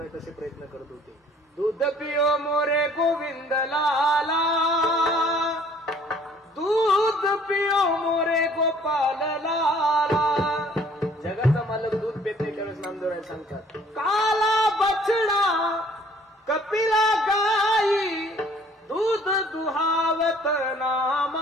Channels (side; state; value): both; normal; correlation 0.57